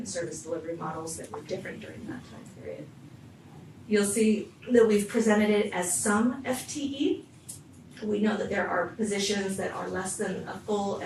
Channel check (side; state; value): both; identical; correlation 1.00